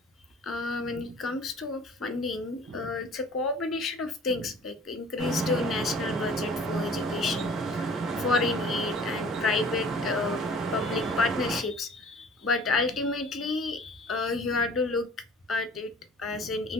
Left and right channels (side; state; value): both; normal; correlation 0.48